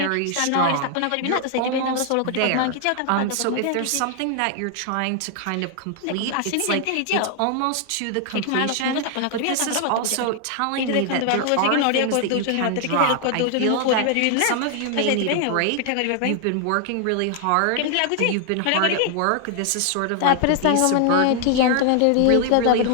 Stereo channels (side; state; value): both; different; correlation 0.00